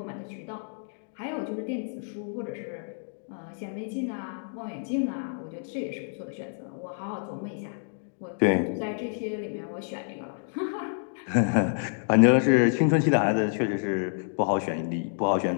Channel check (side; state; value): right; silent; digital silence